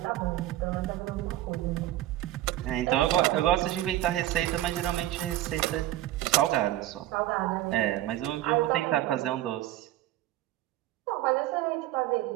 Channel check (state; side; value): quieter; left; 14.6 dB